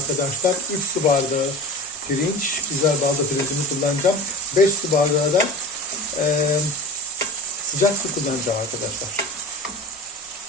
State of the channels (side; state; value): both; normal; correlation 0.34